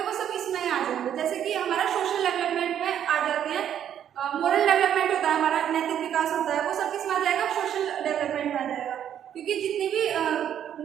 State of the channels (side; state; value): left; quieter; 9.8 dB